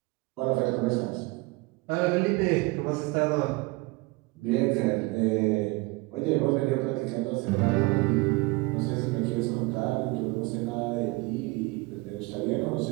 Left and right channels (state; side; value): quieter; left; 24.3 dB